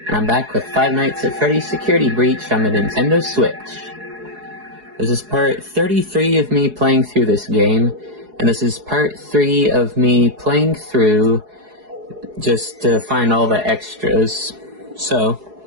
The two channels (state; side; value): late; left; 4.8 ms